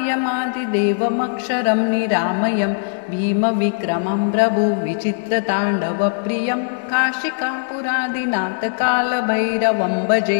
निरामयं भीमविक्रमं प्रभुविचित्रताण्डवप्रियं काशिकापुरादिनाथकालभैरवं भजे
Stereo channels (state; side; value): silent; right; digital silence